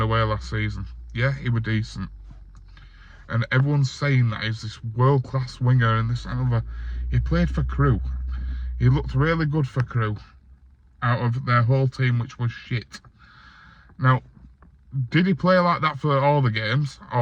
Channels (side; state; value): both; identical; correlation 1.00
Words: away last season. Yeah, he was decent. And everyone's saying that he's this world-class winger and this and other. He played for Crewe. He looked really good for Crewe out of their whole team, which was shit. Now, did he play like that for all the games,